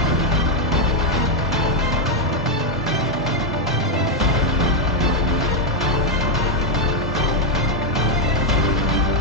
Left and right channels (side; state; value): both; normal; correlation 0.02